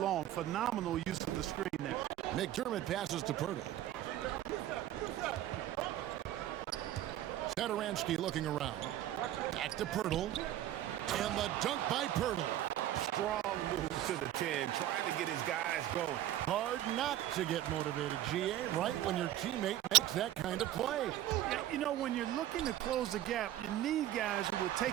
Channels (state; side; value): quieter; left; 13.0 dB